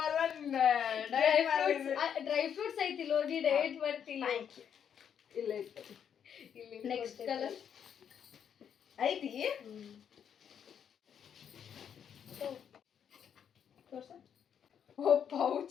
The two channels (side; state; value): right; quieter; 8.3 dB